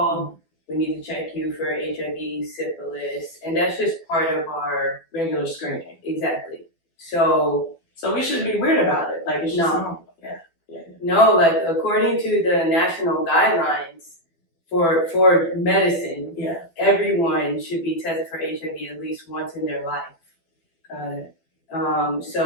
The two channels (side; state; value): right; late; 12 ms